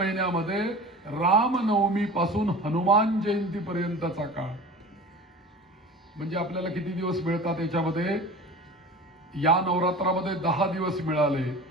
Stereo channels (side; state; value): both; normal; correlation 0.37